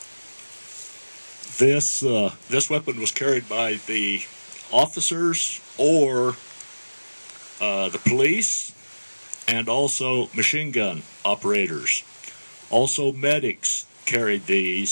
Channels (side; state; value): both; inverted; correlation -1.00